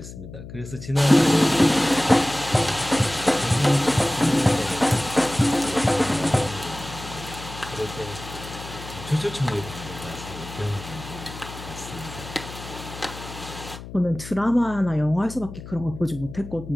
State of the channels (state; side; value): noise; left; hum, 13 dB below the sound